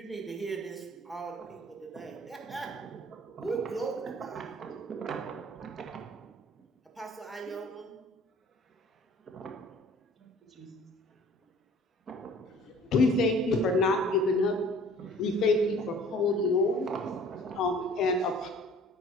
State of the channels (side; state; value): both; normal; correlation 0.50